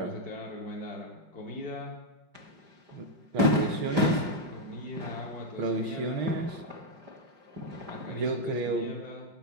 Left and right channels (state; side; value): late; left; 5.0 ms